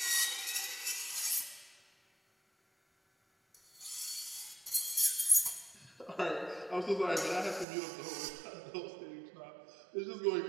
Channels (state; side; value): drops out; left; at 7.7 s